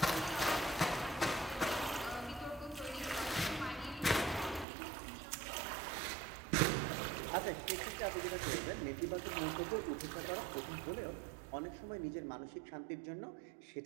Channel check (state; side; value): drops out; left; at 4.7 s